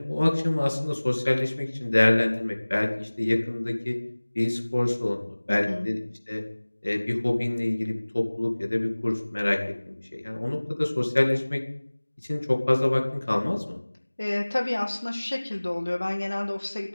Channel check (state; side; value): inverted; both; correlation -1.00